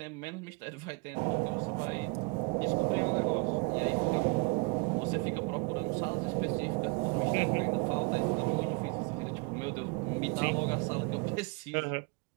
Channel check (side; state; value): left; quieter; 31.0 dB